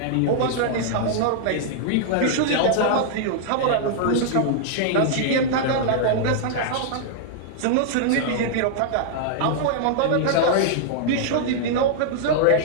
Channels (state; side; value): different; both; correlation -0.01